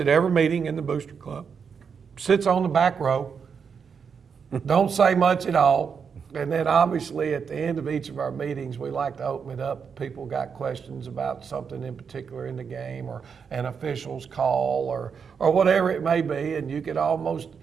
every meeting in the Booster Club, sits on the back row, don't say much at all. And then obviously at the end of each of our meetings, we like to open it up. People got questions about something in particular in the game or an official's call or whatever it may be. And you could almost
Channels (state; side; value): quieter; left; 6.3 dB